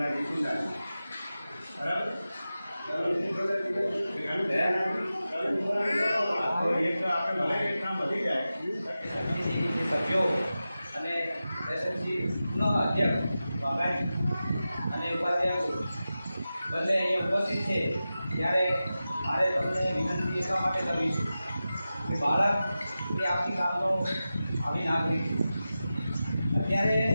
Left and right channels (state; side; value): inverted; both; correlation -0.94